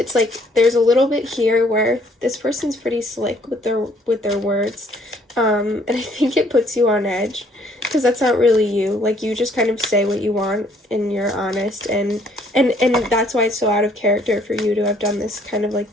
like there's a little bit here where this person's pretty slick with their words, and I think it puts you on edge because that's not really you. Like, you just kind of say what you want and you're honest, and that's why it's so out of character for you to have done this kind of like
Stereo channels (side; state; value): both; normal; correlation 0.63